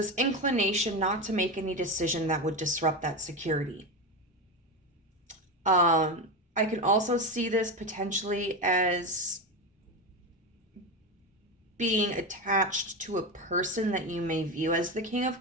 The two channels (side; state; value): both; normal; correlation 0.17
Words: inclination not to make any decision that would disrupt that security. I can also see this potentially as being attached to a person that you may view as the King of